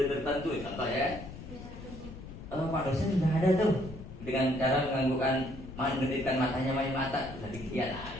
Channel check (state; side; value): noise; left; rumble, 13 dB below the sound